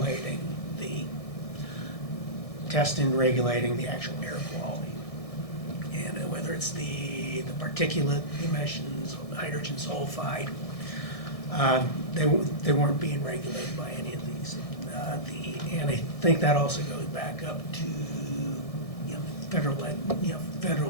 the testing, regulating the actual air quality. And whether it's the particulate emissions, hydrogen sulfide, they weren't being regulated by any of these. And I think that also goes back up to, you know,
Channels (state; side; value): late; right; 1.6 ms